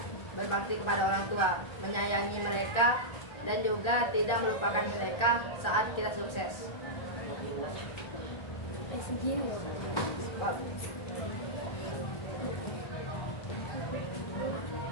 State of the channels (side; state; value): right; late; 1.3 ms